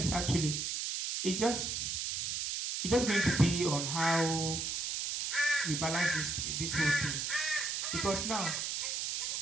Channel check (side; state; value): right; noise; hiss, 1 dB below the sound